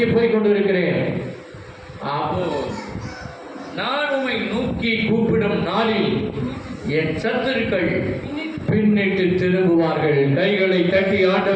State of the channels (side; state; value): both; identical; correlation 1.00